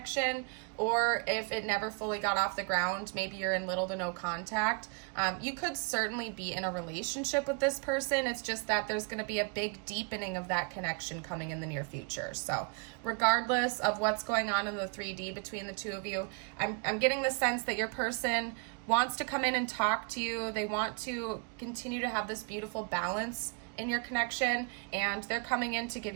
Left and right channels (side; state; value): left; quieter; 34.8 dB